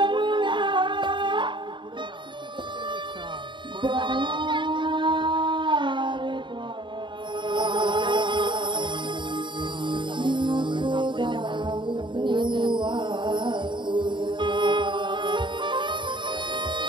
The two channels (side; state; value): left; late; 0.23 ms